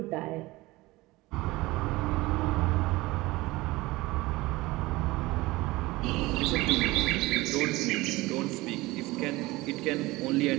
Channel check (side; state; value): left; quieter; 20.3 dB